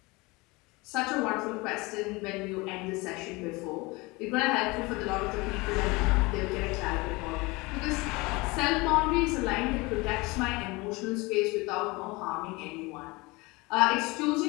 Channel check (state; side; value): quieter; right; 24.1 dB